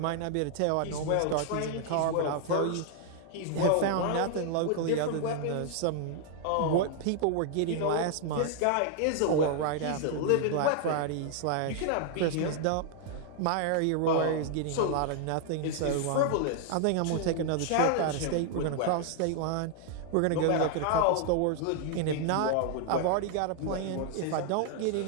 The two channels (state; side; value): different; both; correlation 0.00